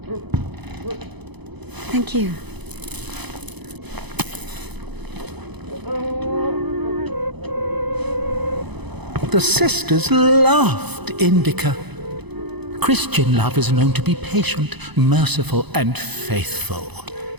Thank you. The sisters loved Indika. Christian love is known to be patient, merciful, and faithful.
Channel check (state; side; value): late; left; 0.99 ms